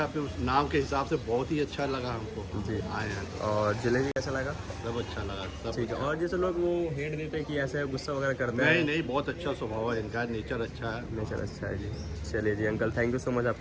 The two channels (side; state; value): both; identical; correlation 1.00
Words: फिर उस नाम के हिसाब से बहुत ही अच्छा लगा हमको जी। आए हैं तो और जलेबी कैसा लगा? सब अच्छा लगा, सब ठीक है। अच्छा। और जैसे लोग वो हेट देते हैं कि ऐसे गुस्सा वगैरह करते हैं। नहीं नहीं, बहुत अच्छा स्वभाव है इनका, नेचर अच्छा है। नेचर अच्छा है जी। चलिए जी uncle, thank you so much